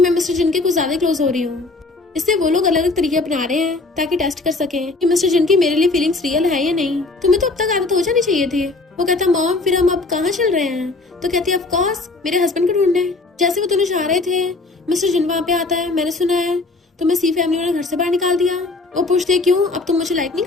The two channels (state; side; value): quieter; right; 3.4 dB